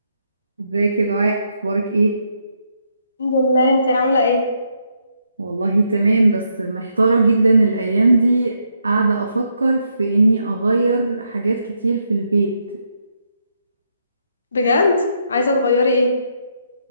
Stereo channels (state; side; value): inverted; both; correlation -0.78